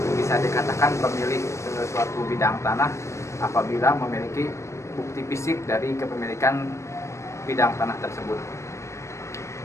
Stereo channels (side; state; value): right; late; 0.14 ms